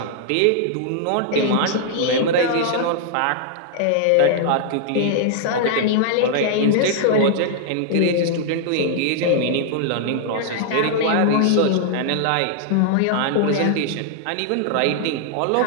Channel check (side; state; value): both; different; correlation -0.01